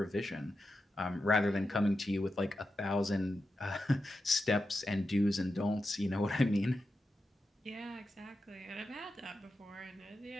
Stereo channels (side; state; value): both; normal; correlation 0.89